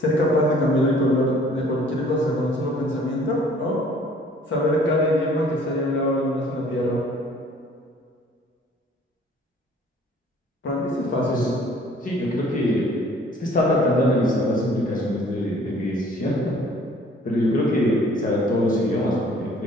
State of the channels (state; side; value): normal; both; correlation 0.55